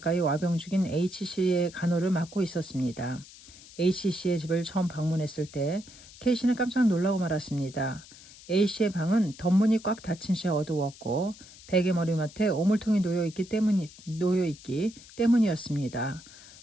와병 중인 H씨의 간호를 맡고 있었습니다. H씨의 집을 처음 방문했을 때 K씨는 깜짝 놀라고 말았습니다. A씨의 방은 덧문이 꽉 닫힌 채 어두웠고 베개 머리맡에 오물통이 놓여있기 때문이었습니다.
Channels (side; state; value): left; noise; hiss, 20 dB below the sound